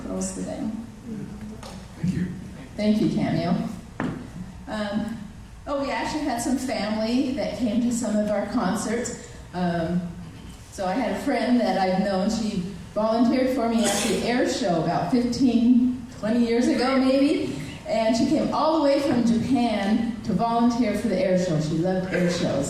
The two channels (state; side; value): identical; both; correlation 1.00